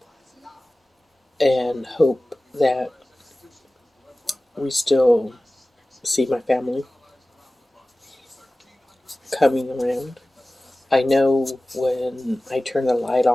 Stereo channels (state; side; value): normal; both; correlation 0.97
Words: and hope that we still see my family coming around. I know when I turn the light